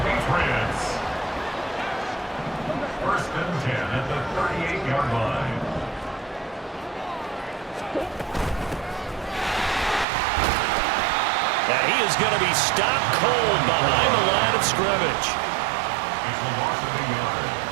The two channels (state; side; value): drops out; left; at 10.1 s